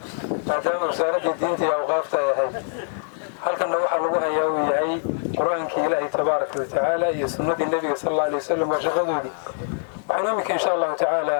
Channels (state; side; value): silent; right; digital silence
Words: بعدين وزارة الدين تي أوقافها يا هاي هل كان نوح الله يا هاي قرآن كي إلهي تبارك وتعالى يسنة النبي صلى الله عليه وسلم وشغله دي وعنامك إن شاء الله تعالى